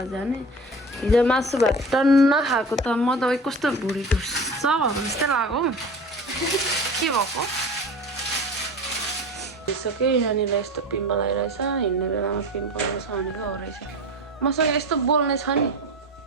जाने हिजो मासु भात टन्न खाएको त म त कस्तो भुँडी ढुस्छ भएको जस्तै लाग्यो के भएको भइसक्यो यहाँनिर यस्तो पिम्पल आइरहेछ हिँड्ने बेलामा पिम्पल आउँछ भनेको हो रहेछ मसँग यस्तो बोल्ने छ नि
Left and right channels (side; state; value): both; normal; correlation 0.34